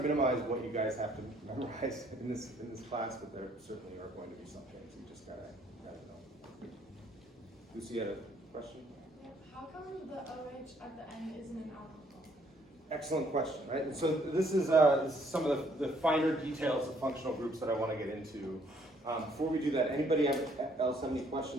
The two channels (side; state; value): both; normal; correlation 0.65